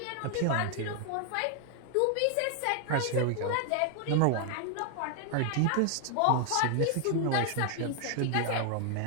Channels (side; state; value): both; different; correlation 0.00